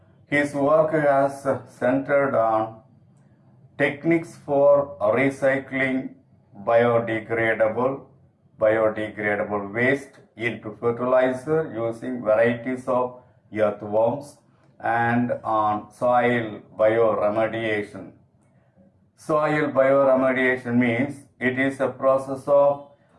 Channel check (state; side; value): identical; both; correlation 1.00